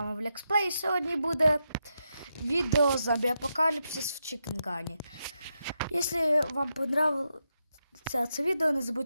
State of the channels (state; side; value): inverted; both; correlation -0.84